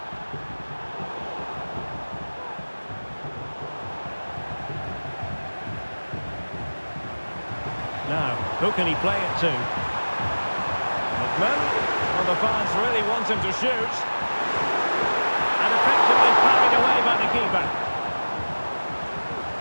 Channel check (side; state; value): both; inverted; correlation -1.00